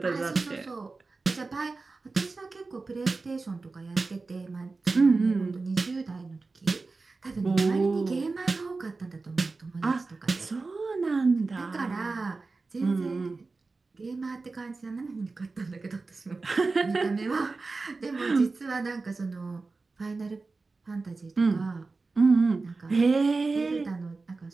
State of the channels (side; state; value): left; quieter; 3.8 dB